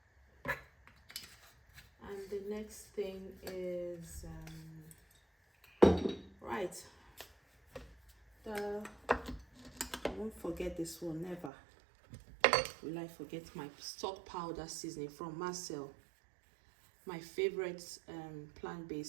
And the next thing is right, I won't forget this one, never will I forget my stock powder seasoning from Marcel, my favorite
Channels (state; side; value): drops out; left; at 11.5 s